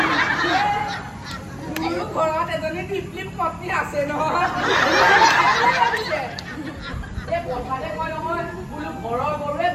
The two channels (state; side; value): identical; both; correlation 1.00